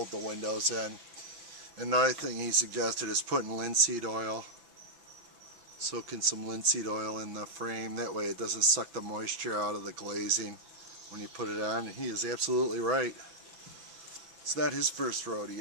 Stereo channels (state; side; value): late; left; 6.1 ms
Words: the windows in. Another thing he suggested is putting linseed oil. Soaking some linseed oil in the frame. That way it doesn't suck the moisture out of the glazing when you put it on. And he is absolutely right. It's not his first